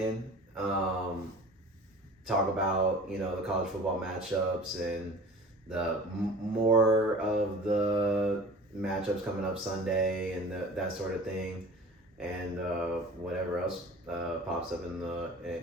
Talk about the college football matchups and the more of the matchups coming up Sunday and that sort of thing, and whatever else pops up in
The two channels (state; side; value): normal; both; correlation 0.41